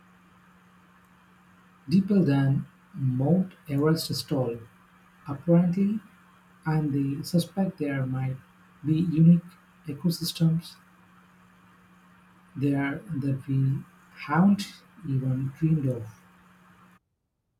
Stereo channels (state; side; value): identical; both; correlation 1.00